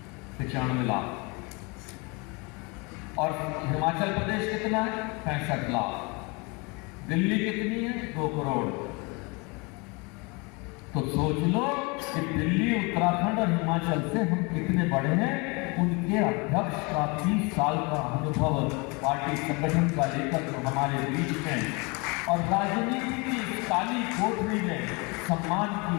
95 लाख। और हिमाचल प्रदेश कितना है? 65 लाख। दिल्ली कितनी है? 2 करोड़। तो सोच लो कि दिल्ली, उत्तराखंड और हिमाचल से हम कितने बड़े हैं। उनके अध्यक्ष का 30 साल का अनुभव पार्टी संगठन का लेकर जो हमारे बीच में और राजनीति की काली कोठरी में सम्मान की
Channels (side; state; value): right; quieter; 29.0 dB